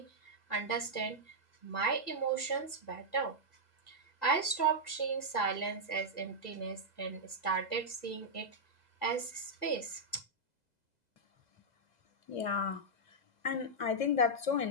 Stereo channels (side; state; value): right; late; 2.0 ms